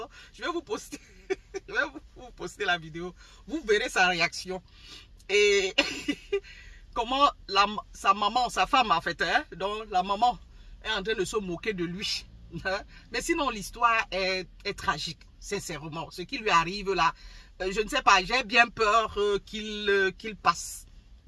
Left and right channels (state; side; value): identical; both; correlation 1.00